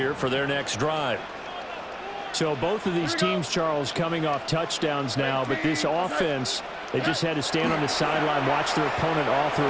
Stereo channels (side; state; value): both; identical; correlation 1.00